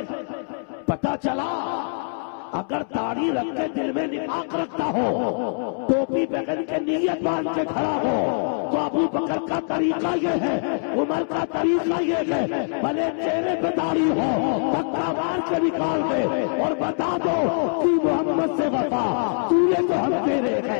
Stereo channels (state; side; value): silent; right; digital silence